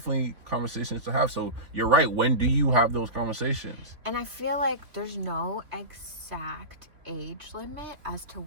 conversations to have. So you're right. When do you have those conversations? And I feel like there's no exact age limit as to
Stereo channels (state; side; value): late; left; 3.1 ms